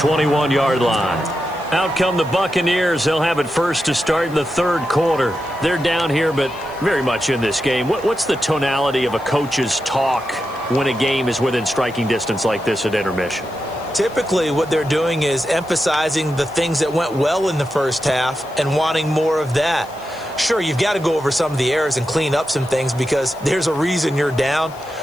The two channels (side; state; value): left; noise; hiss, 25 dB below the sound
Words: line. Out come the Buccaneers. They'll have it first to start in the 3rd quarter. They're down here, but very much in this game. What's the tonality of a coach's talk when a game is within striking distance like this at intermission? Typically, what they're doing is emphasizing the things that went well in the first half and wanting more of that. Sure, you've got to go over some of the errors and clean up some things because there's a reason you're down.